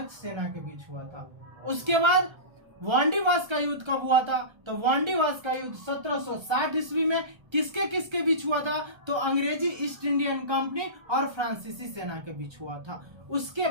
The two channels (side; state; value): left; late; 1.3 ms